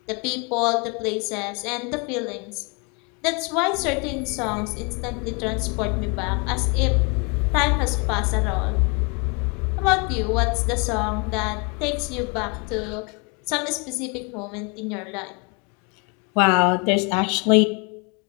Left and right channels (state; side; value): quieter; right; 32.3 dB